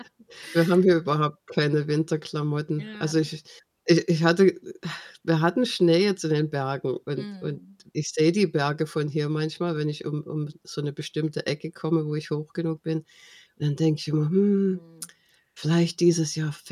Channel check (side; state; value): both; identical; correlation 1.00